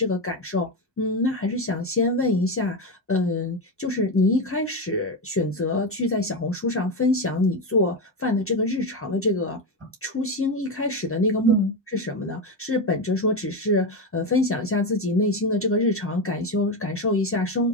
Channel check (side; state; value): both; normal; correlation 0.13